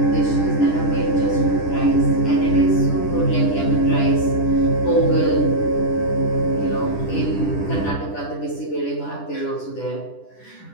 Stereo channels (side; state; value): right; late; 10 ms